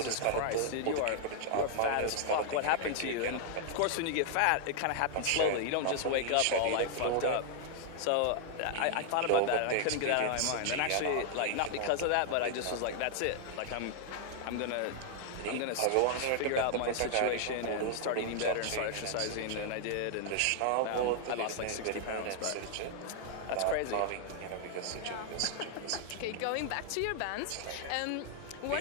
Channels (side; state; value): both; different; correlation 0.00